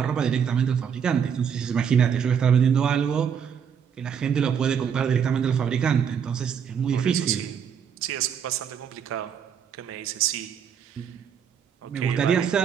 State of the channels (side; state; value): left; quieter; 7.6 dB